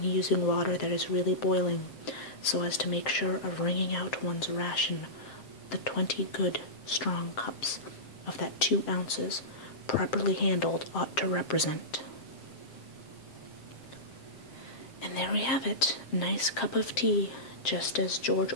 using water that is really boiling, so as to make sure of wringing out one's ration the 20 good, strong cups of that 2 ounces, properly handled, ought to represent. And there we have it, a nice cup of tea, just as George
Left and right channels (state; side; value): late; right; 7.6 ms